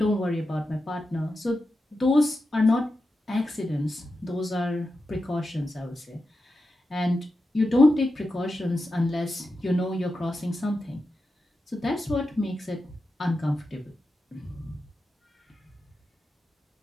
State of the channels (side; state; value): both; normal; correlation 0.90